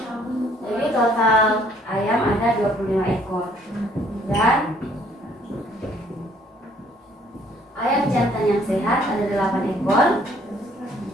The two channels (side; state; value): both; normal; correlation 0.62